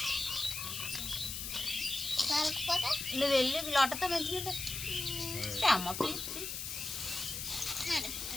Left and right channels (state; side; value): noise; left; hiss, 5 dB below the sound